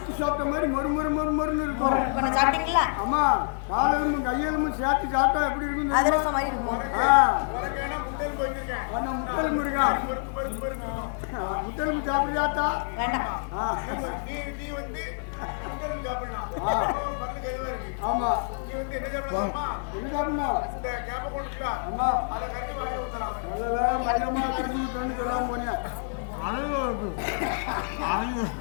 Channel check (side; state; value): right; silent; digital silence